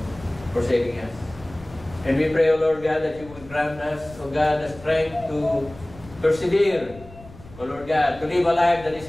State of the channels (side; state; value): left; noise; rumble, 19 dB below the sound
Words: for saving us. And we pray, O Lord God, that you would grant us, O God, the strength to persevere, O Lord God, to live a life that is